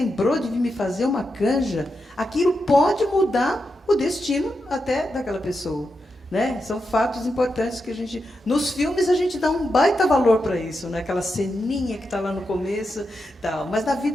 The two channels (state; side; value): normal; both; correlation 0.87